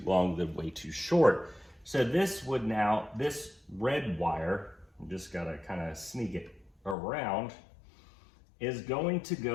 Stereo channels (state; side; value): drops out; right; at 7.0 s